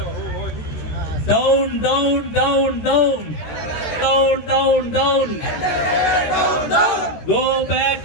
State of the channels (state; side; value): late; right; 13 ms